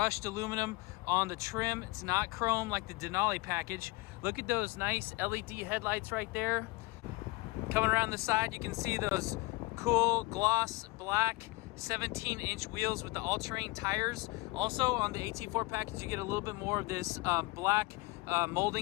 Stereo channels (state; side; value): quieter; right; 23.1 dB